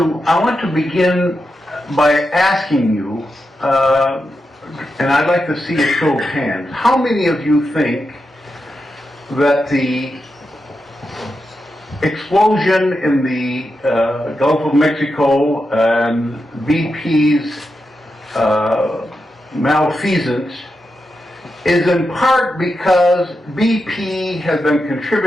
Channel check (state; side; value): normal; both; correlation 0.88